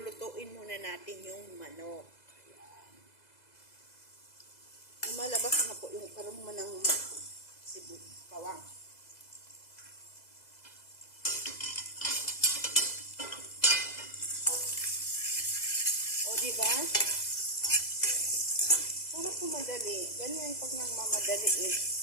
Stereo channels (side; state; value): right; late; 2.0 ms